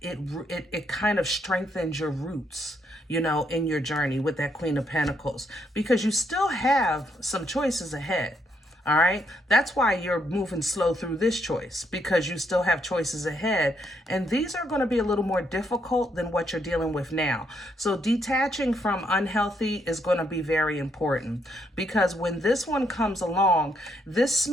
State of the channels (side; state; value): both; normal; correlation 0.75